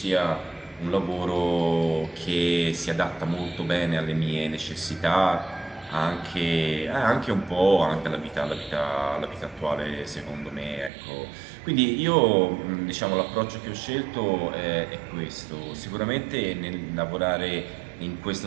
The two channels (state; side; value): drops out; left; at 10.9 s